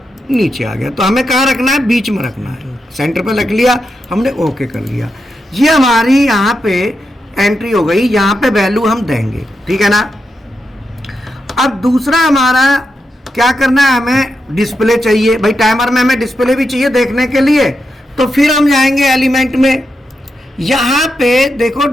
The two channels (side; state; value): both; normal; correlation 0.86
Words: नीचे आ गया। तो हमें कहाँ रखना है, बीच में रखना है। सेंटर पे रख लिया हमने, ओके कर लिया। ये हमारी यहाँ पे एंट्री हो गई, यहाँ पे वैल्यू हम देंगे, ठीक है ना। अब दूसरा हमारा क्या करना है, हमें डिस्प्ले चाहिए भाई। टाइमर में हमें डिस्प्ले भी चाहिए देखने के लिए। तो फिर हम जाएंगे एलिमेंट में, यहाँ पे देखो